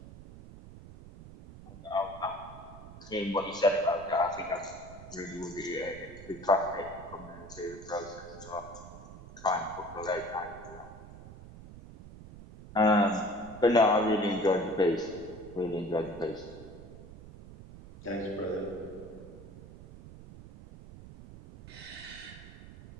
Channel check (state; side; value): noise; right; rumble, 16 dB below the sound